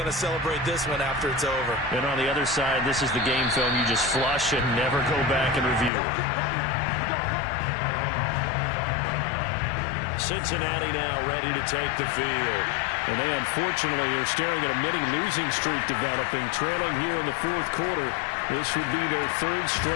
to celebrate this one after it's over. And on the other side, this is the game film you just flush and never go back and review. Cincinnati now ready to take the field. And they unfortunately are staring at a mini losing streak developing, trailing here in the fourth quarter. This would be their third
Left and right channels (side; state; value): right; drops out; at 5.9 s